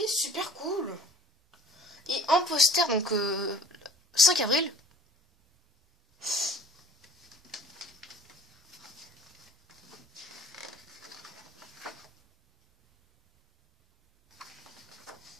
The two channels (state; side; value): normal; both; correlation 0.48